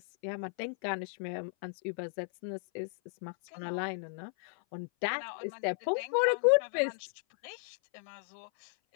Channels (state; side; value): silent; right; 55 dB below the other